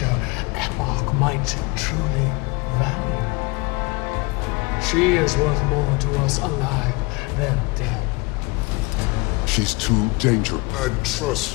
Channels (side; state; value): right; quieter; 26.5 dB